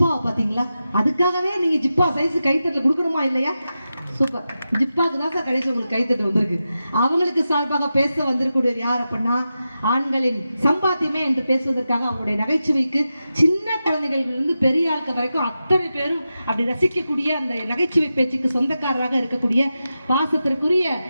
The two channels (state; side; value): inverted; both; correlation -0.91